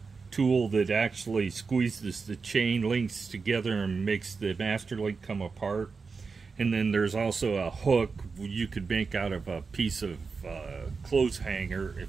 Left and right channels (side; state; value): left; quieter; 4.8 dB